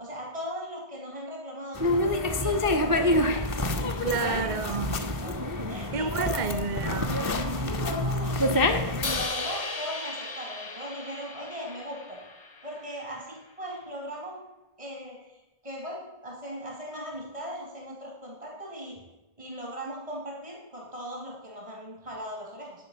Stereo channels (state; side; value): late; left; 1.5 ms